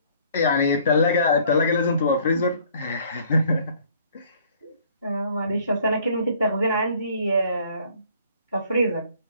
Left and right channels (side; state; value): both; inverted; correlation -0.58